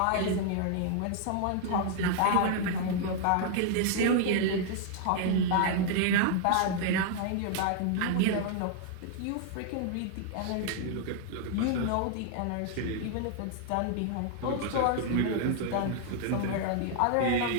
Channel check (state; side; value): different; both; correlation -0.01